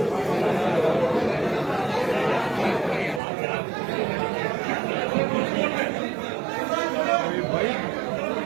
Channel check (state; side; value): drops out; left; at 3.2 s